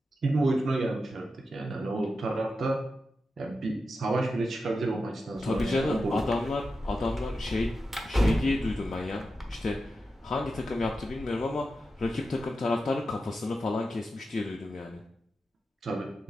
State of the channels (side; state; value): both; normal; correlation 0.90